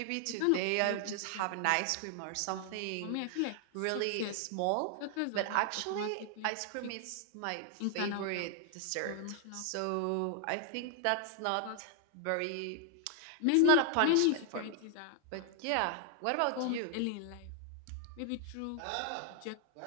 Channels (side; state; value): both; different; correlation 0.00